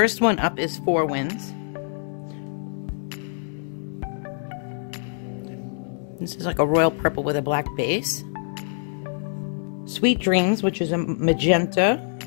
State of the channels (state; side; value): silent; right; digital silence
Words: one up is Four Winds. This is like a royal purple with a black base. Sweet Dreams, which is a magenta.